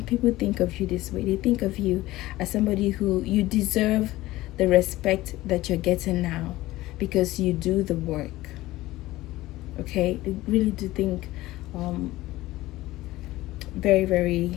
people think of you this way. They think of you as somebody who you deserve the respect that you're getting now because you do the work. Okay, they really do think very,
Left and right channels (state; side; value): quieter; right; 17.5 dB